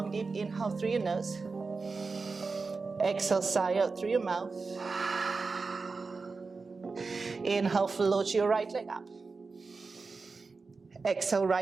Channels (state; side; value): quieter; left; 4.3 dB